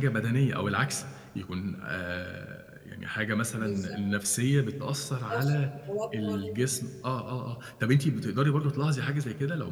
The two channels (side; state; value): both; identical; correlation 1.00